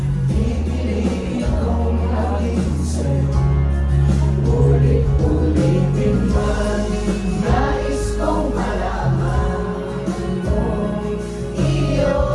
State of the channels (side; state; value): both; identical; correlation 1.00